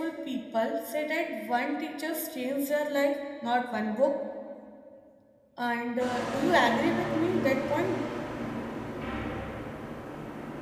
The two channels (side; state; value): both; identical; correlation 1.00